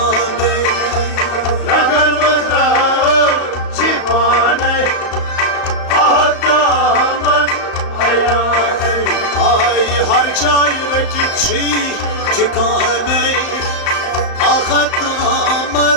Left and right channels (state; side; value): late; right; 35 ms